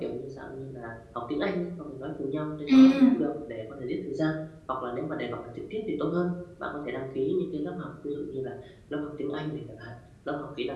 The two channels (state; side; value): identical; both; correlation 1.00